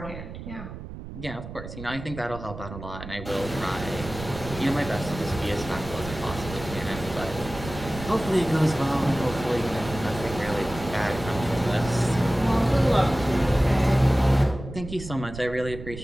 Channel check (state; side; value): noise; right; rumble, 11 dB below the sound